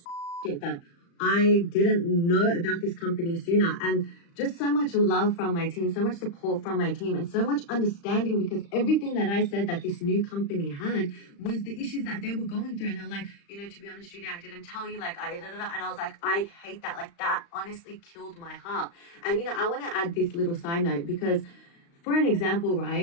shit that I didn't know about this company sooner. And just so much love from my team, so much support from my team, and so much understanding, because everything that I said that this new company had was the issues that they were going through. And they were like, to be honest, Judy, I didn't tell you, like, and I was like, I hate that. Like, that honestly killed my heart. And, I want to add this little side note, because for an example,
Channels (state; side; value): late; right; 35 ms